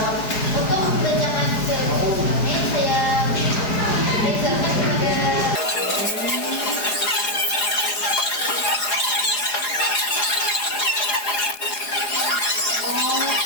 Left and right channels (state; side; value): late; right; 4.8 ms